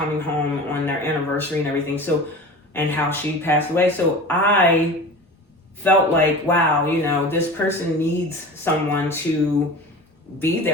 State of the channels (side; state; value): both; normal; correlation 0.35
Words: home on their anniversary and everything. So, and how she passed away. So I felt like, wow, this person needs someone to be